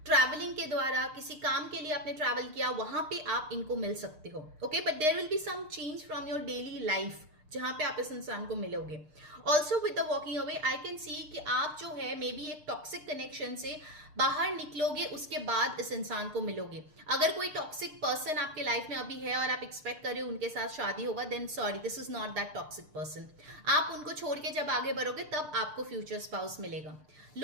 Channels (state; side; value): late; left; 6.6 ms